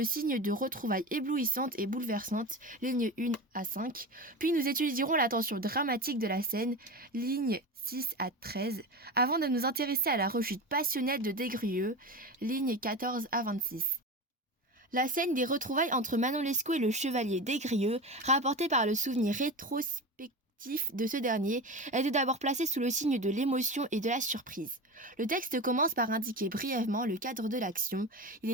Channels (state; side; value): normal; both; correlation 0.26